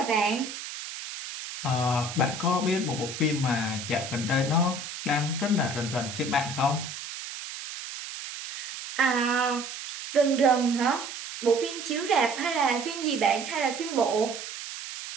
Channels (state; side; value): noise; right; hiss, 9 dB below the sound